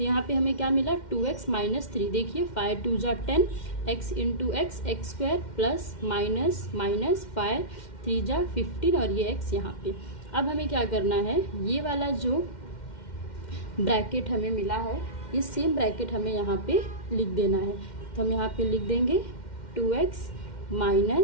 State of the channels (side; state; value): right; late; 2.1 ms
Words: यहाँ पे हमें क्या मिला 2x माइनस 3। देखिए 5 2 जा 10, x into x square plus minus minus 5 3 जा 15 और ये x यहाँ पे। अब हमें क्या करना है, ये वाला जो ब्रैकेट हमें मिला है ये सेम ब्रैकेट हमें यहाँ पे लिख देना है। तो हम यहाँ पे लिख देंगे 2x